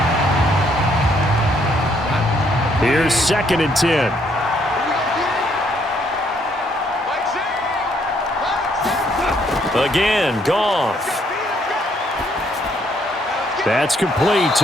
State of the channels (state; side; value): normal; both; correlation 0.69